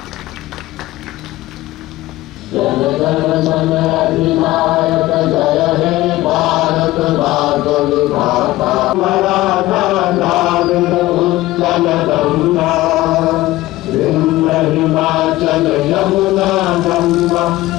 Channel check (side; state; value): right; quieter; 17.3 dB